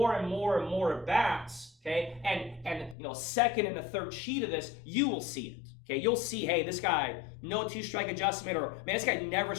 and more and more at bats, okay, and you know, second and the third sheet of this, you will see it. Okay, you'll see, hey, this guy, no 2-strike adjustment, or man, this guy never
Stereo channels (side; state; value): right; drops out; at 3.0 s